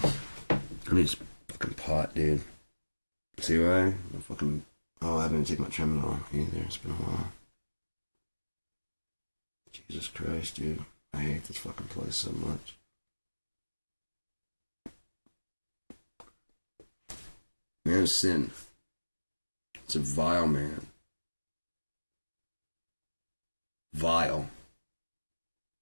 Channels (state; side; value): inverted; both; correlation -1.00